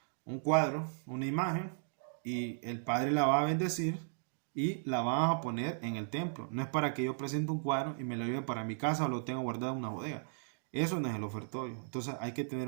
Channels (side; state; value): left; silent; digital silence